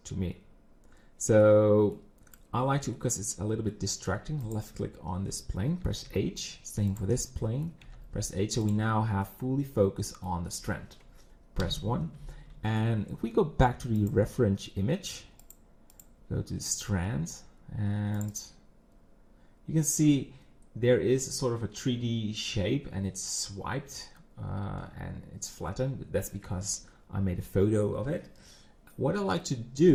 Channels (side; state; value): both; identical; correlation 1.00